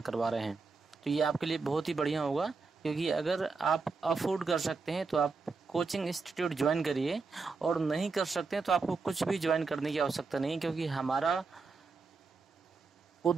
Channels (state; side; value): quieter; left; 4.4 dB